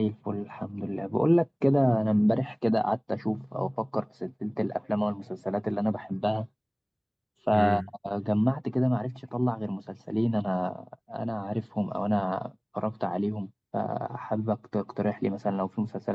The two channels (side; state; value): both; identical; correlation 1.00